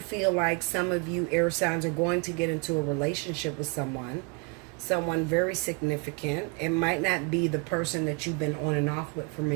like some of you air signs are going to get into a relationship with someone very significant. It might not be the person that you've been on and off with for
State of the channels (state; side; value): quieter; left; 31.4 dB